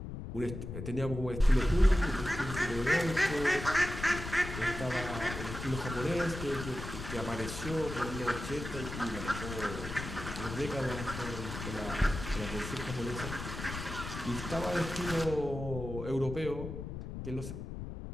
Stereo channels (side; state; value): left; noise; rumble, 8 dB below the sound